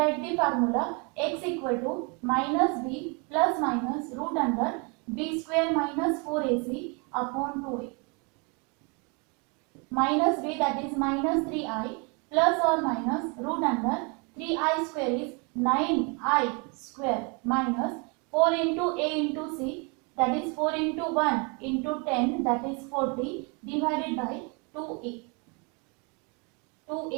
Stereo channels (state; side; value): quieter; left; 32.6 dB